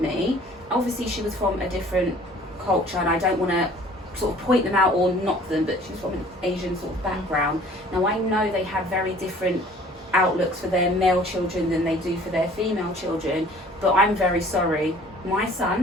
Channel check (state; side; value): normal; both; correlation 0.52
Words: me, obviously she was from a different culture, and I don't want to sort of point them out or knock them, but she's from an Asian sort of background. Now, I know they have very different outlooks for their male children than they do for their female children, but I'm very sorry. My